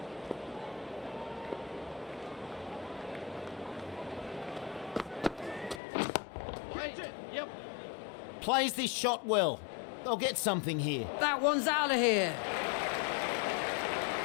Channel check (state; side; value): drops out; right; at 5.8 s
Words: Right. Yep. Plays this shot well. They'll get something here. That one's out of here.